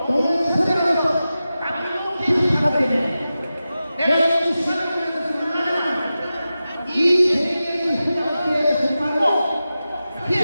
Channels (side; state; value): both; inverted; correlation -0.93